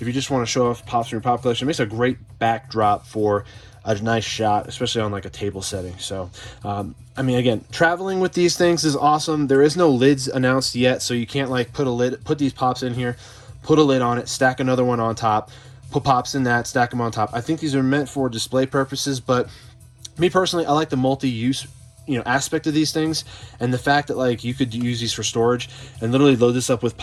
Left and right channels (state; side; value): identical; both; correlation 1.00